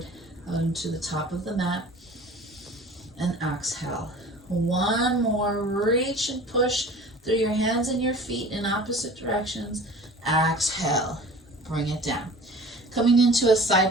onto the top of the mat. And exhale. 1 more. Reach and push through your hands and your feet in opposite directions. Exhale. Bring it down. Coming into a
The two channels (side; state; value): both; normal; correlation 0.42